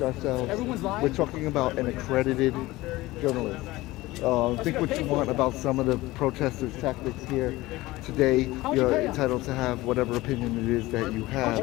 ourselves. We're talking about an accredited journalist. Think what you want about some of the protesters' tactics here today. You're entitled to have whatever opinion it is that you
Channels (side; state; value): right; quieter; 19.0 dB